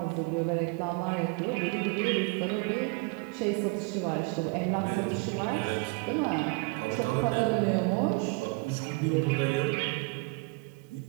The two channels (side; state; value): left; quieter; 28.9 dB